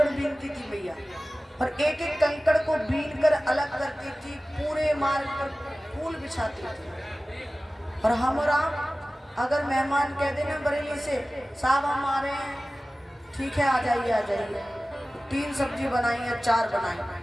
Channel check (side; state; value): both; normal; correlation 0.97